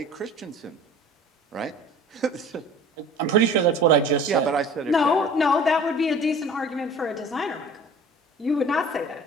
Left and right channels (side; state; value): both; normal; correlation 0.44